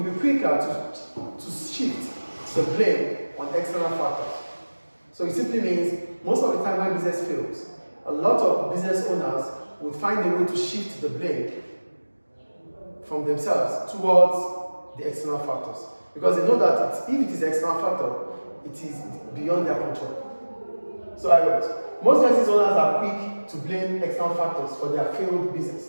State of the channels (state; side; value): inverted; both; correlation -1.00